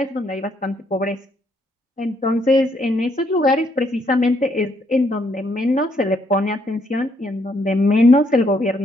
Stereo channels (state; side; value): normal; both; correlation 0.72